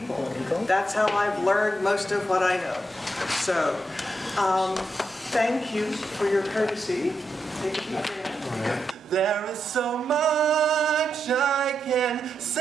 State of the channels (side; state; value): both; normal; correlation 0.84